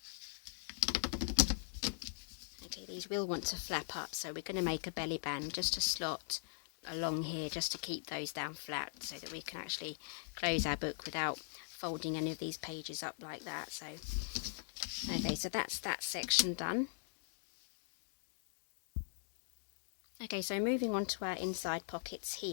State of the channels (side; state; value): right; silent; digital silence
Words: Okay, these will want to flap up, so we're going to make a belly band just to slot along here, just to keep those down flat so that we can actually close our book without folding any of these pages up like that. So, okay, so that's that section done. Okay, so moving on to our inside pockets